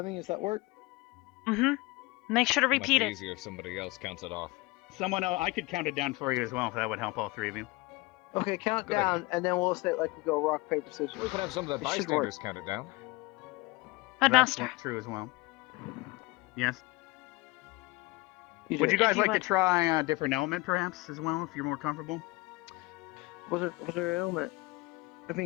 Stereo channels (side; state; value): right; quieter; 23.2 dB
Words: does that work? Mm-hmm. Make sure to repeat Might be it. easier if somebody else counts it off. Someone else, I could count it down for you as well if that would help all three of you. Okay, count Good down, and then we'll say it like we go rock, paper, scissors. We can have some of the It should work. bystanders count it down. Headmaster. That's true as well. Yes. You Would do you it. guys like to try a different element, perhaps, as well, if you're more comfortable? What's our element? I